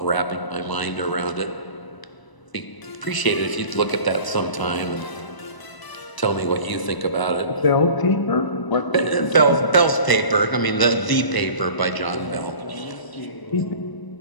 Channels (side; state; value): right; late; 1.0 ms